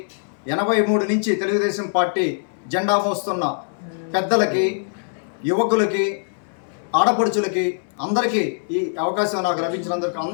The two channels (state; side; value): silent; right; 64 dB below the other